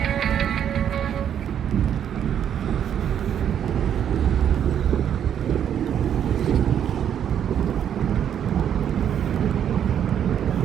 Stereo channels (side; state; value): left; quieter; 9.3 dB